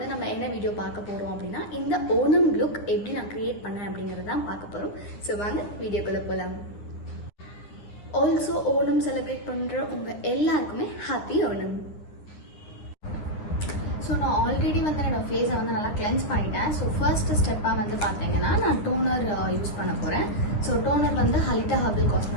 நம்ம என்ன வீடியோ பார்க்க போகிறோம் அப்படின்னா இந்த ஓணம் லுக் எப்படி நான் க்ரியேட் பண்ணேன் அப்படிங்கிறது தான் பார்க்க போகிறோம். ஸோ வாங்க வீடியோக்குள்ளே போகலாம். ஆல்சோ ஓணம் செலிப்ரேட் பண்ணுற உங்கள் எல்லாருக்குமே ஹாப்பி ஓணம். ஸோ நான் ஆல்ரெடி வந்து என்னோட ஃபேஸை வந்து நல்லா கிளென்ஸ் பண்ணிட்டேன். ஸோ ஃபர்ஸ்ட் ஸ்டெப்பாக வந்து பார்த்தீங்கன்னா நான் டோனர் யூஸ் பண்ண போகிறேன். ஸோ டோனர் வந்து ஹலிட்டா ஹெர்பல்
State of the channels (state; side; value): late; right; 9.8 ms